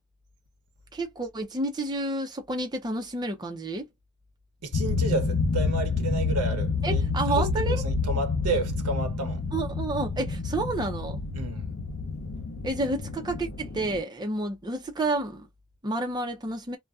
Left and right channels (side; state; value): both; normal; correlation 0.44